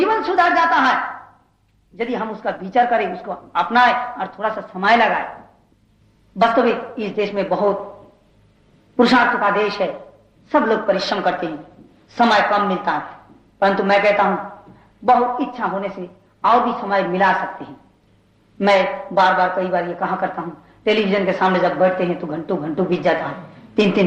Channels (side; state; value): both; identical; correlation 1.00